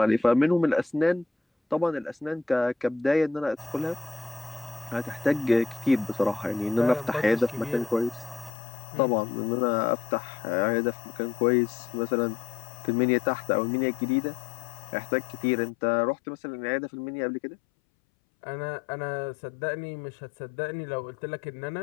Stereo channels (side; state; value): right; drops out; at 8.5 s